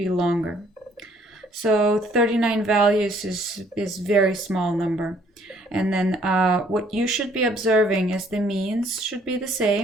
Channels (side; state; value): both; normal; correlation 0.62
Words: longer. So 39 values is very small number. And then what you should be observing is the means should be the